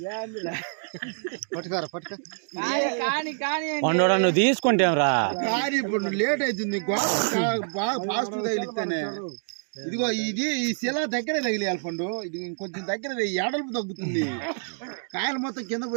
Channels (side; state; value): left; silent; digital silence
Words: పండు నువ్వు తీసుకుంటేరా కానీ ఇప్పుడు లేట్ అవుతుంది బాగా ఫాస్ట్ తగిలిస్తేనే ఇదిగో ఇది ఈ శిల దగ్గరే తగిలియాలి పండు ఇది ఇంకొంచెం దగ్గర ఎడల్పు తగ్గుతుంది కాయలు మొత్తం కింద